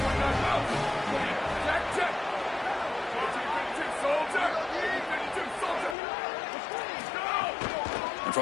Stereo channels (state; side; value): drops out; right; at 6.0 s